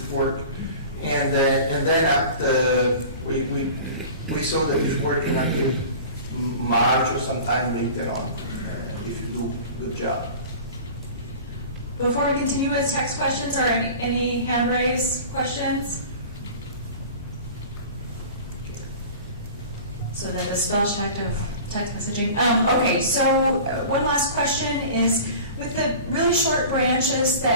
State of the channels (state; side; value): inverted; both; correlation -0.39